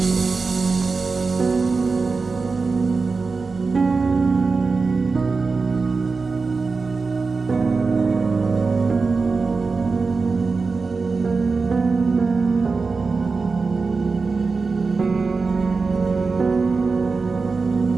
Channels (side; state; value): left; quieter; 4.3 dB